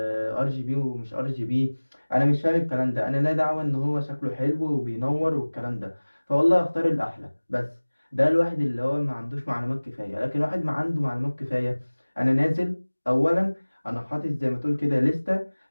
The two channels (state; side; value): inverted; both; correlation -1.00